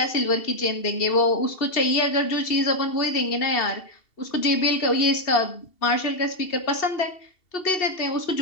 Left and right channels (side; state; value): right; late; 2.7 ms